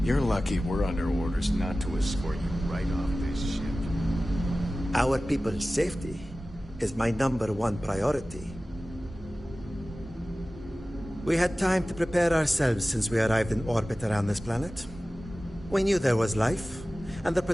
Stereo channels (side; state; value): both; normal; correlation 0.96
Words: You're lucky we're under orders not to escort you right off this ship. Our people's safety is my #1 priority. We had time to prepare ourselves since we arrived in orbit around this planet. We knew there was life, and the